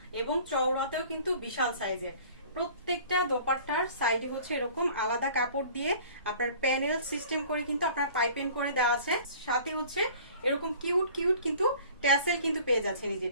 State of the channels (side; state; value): both; inverted; correlation -0.48